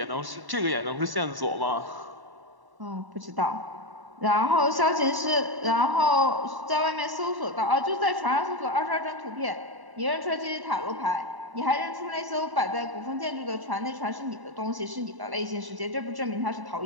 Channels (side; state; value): left; late; 1.1 ms